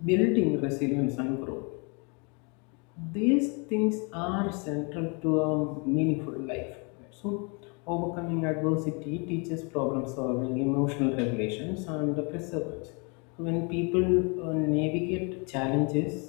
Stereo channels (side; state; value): right; quieter; 33.4 dB